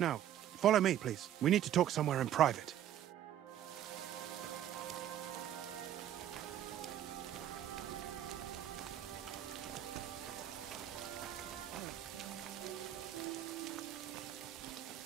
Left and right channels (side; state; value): left; quieter; 11.2 dB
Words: follow me, please. We need to talk somewhere in private.